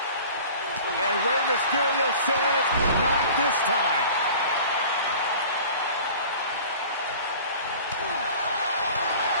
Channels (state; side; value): inverted; both; correlation -0.43